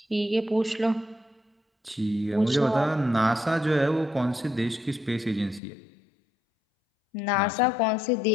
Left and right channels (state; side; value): drops out; right; at 5.6 s